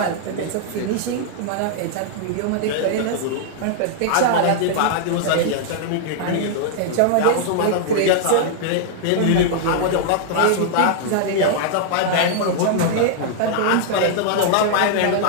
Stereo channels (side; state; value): both; different; correlation -0.01